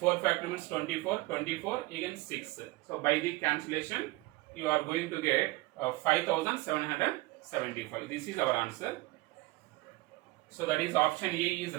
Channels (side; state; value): left; quieter; 20.8 dB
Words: factorial means 24, 24 again 6. So by the cancellation you are going to get 5775. This is our answer. So that is option A is